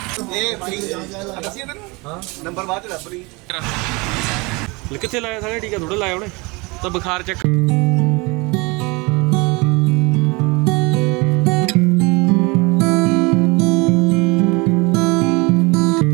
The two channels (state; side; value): quieter; left; 26.1 dB